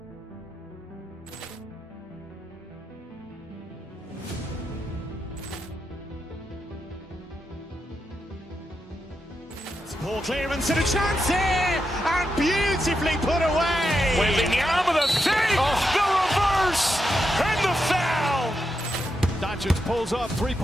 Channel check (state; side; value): normal; both; correlation 0.86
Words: Ball clearance and a chance here, and beautifully put away. Wembanyama with a save, the reverse, and the foul. Doncic pulls up,